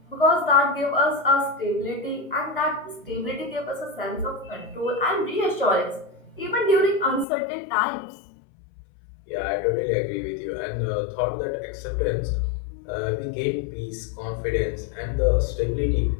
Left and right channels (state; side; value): drops out; right; at 7.2 s